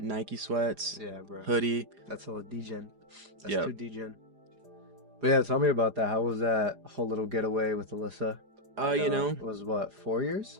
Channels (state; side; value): late; left; 4.9 ms